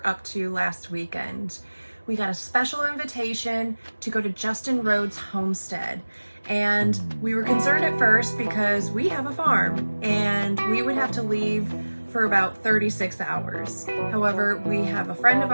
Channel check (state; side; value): inverted; both; correlation -1.00